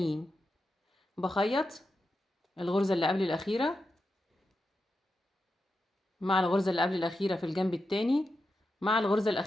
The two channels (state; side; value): normal; both; correlation 0.88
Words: بخيط الغرزة اللي قبل الأخيرة مع الغرزة اللي قبل الأخيرة في الجنب التاني مع الغرزة